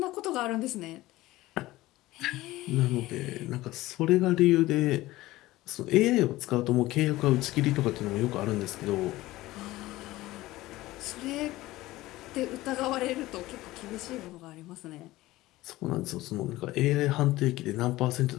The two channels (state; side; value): quieter; right; 17.6 dB